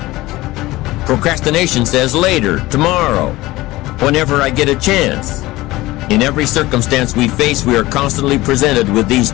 Procrastination says later, tomorrow, whenever I get a chance. In every circumstance we face, we are constantly presented with these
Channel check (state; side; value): quieter; right; 18.7 dB